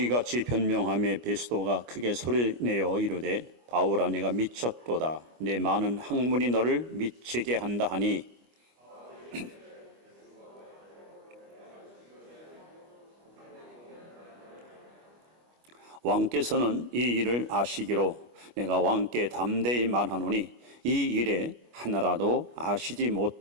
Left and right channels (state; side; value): late; left; 25 ms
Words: 같이 변명하며 베스도가 크게 소리내어 이르되 바울아 내가 미쳤도다. 내 많은 학문이 너를 미치게 한다 하니 왕께서는 이 일을 아시기로 내가 왕께 담대히 말하노니 이 일에 하나라도 아시지